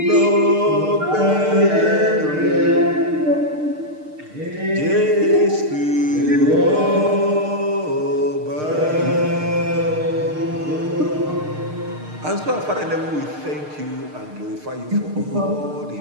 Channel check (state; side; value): late; left; 6.6 ms